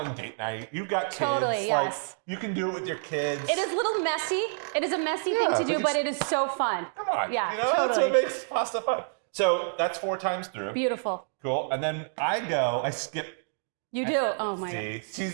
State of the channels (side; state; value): left; silent; digital silence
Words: date night. You've got kids. Totally, yes. You can do it with your kids. It is a little messy. It is a messy thing to do, but it is so fun. Come on. Yeah, totally. That's what makes pasta fun. So that's 4 times through. Beautiful. Cool. And then I skip You do? Oh my God. See,